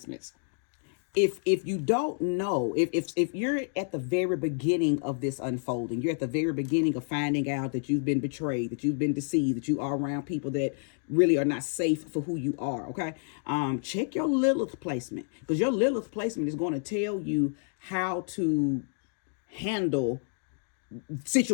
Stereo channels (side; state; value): right; silent; digital silence